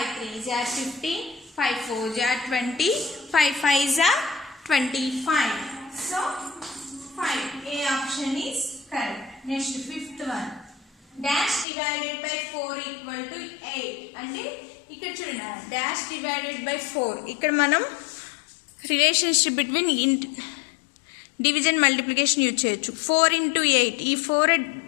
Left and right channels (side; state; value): right; drops out; at 11.7 s